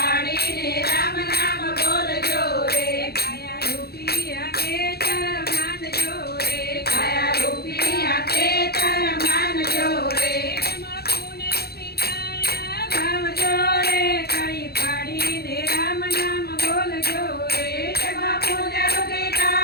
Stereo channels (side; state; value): right; late; 0.46 ms